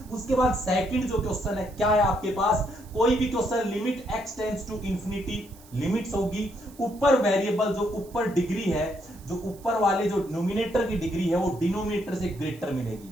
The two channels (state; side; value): noise; right; hiss, 24 dB below the sound